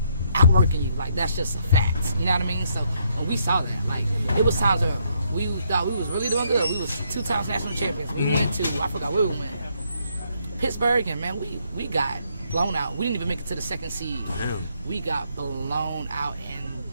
outworking you. Like that's just a fact. You know what I mean? So when we saw that, like it was times where we thought we was really doing good. We was 2 times national champions. We went to, I forgot where we went, Pittsburgh, and man, we got blown out. We didn't even make it to the second seed. Damn. We got blown out, and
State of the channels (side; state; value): both; inverted; correlation -0.73